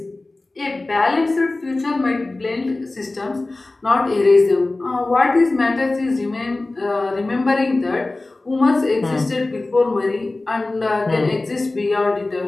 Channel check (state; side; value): quieter; right; 3.0 dB